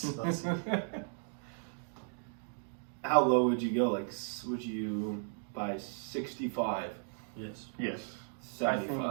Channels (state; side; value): silent; left; digital silence